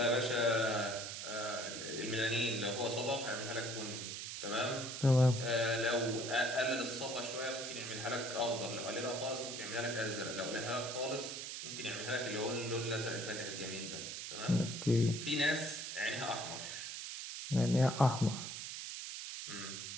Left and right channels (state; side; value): noise; right; hiss, 6 dB below the sound